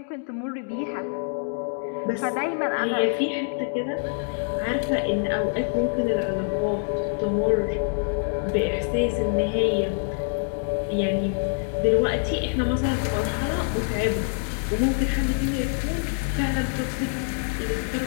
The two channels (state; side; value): silent; right; 61 dB below the other